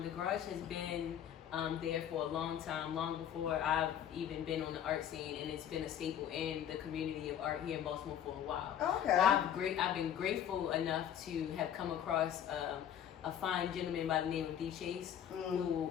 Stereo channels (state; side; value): quieter; right; 9.7 dB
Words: garage has been there for a long time, long before I've even been on the art scene, and it's been a staple in the community of art here in Baltimore for a while. Okay. I've been grateful enough to have come across a fine gentleman by the name of D. Chase, who